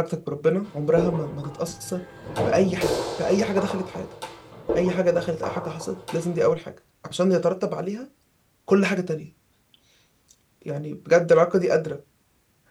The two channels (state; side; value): identical; both; correlation 1.00